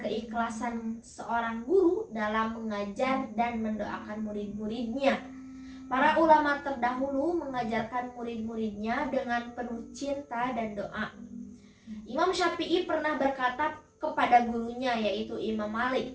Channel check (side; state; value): both; identical; correlation 1.00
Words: keikhlasan seorang guru dalam mengajar dan mendoakan murid-muridnya. Para ulama terdahulu mengajarkan murid-muridnya dengan penuh cinta dan doa. Imam Syafi'i pernah berkata kepada gurunya yaitu Imam